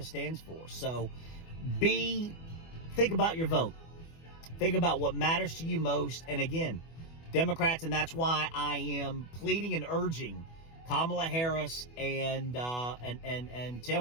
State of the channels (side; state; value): right; late; 24 ms